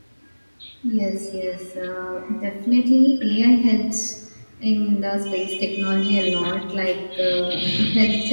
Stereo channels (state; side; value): inverted; both; correlation -1.00